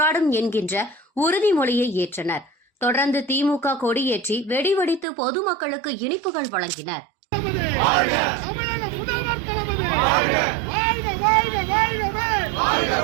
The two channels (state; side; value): drops out; left; at 5.1 s